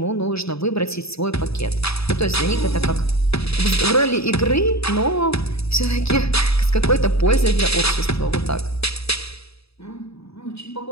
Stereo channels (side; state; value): right; late; 0.78 ms